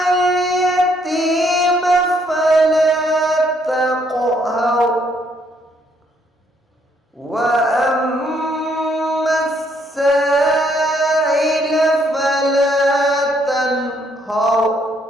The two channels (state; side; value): normal; both; correlation 0.69